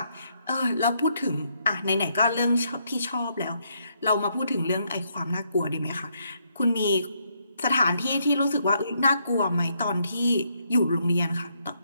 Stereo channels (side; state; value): both; inverted; correlation -0.75